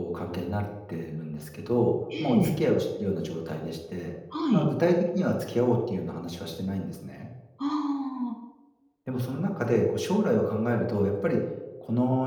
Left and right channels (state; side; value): identical; both; correlation 1.00